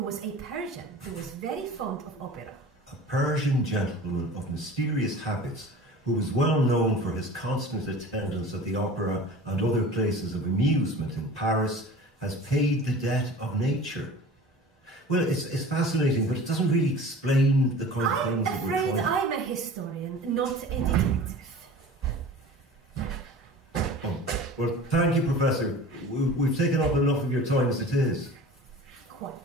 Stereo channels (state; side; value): normal; both; correlation 0.40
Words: a Persian who was very fond of opera. A Persian gentleman of mysterious habits who was well known for his constant attendance at the opera and other places of amusement in Paris has paid the debt of nature. Well, it's fascinating, but it doesn't really explain the kind of things that we're trying. I'm afraid I'm a historian, not a detective. Oh. Well, thank you, Professor. We've taken up enough of your time as it is. Quite.